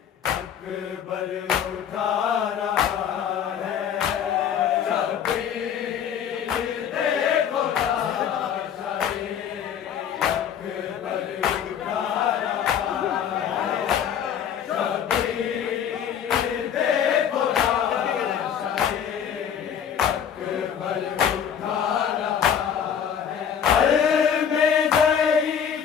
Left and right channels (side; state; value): right; quieter; 8.5 dB